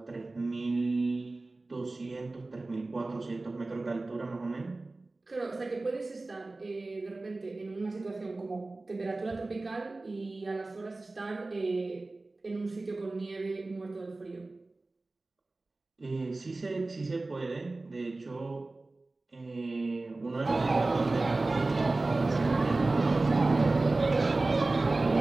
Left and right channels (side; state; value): left; quieter; 3.2 dB